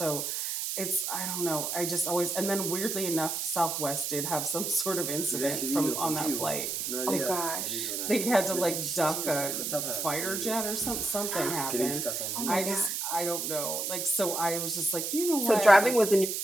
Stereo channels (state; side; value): noise; right; hiss, 2 dB below the sound